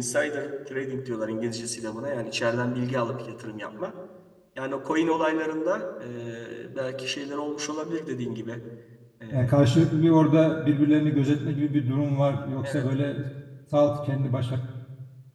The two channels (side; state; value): both; identical; correlation 1.00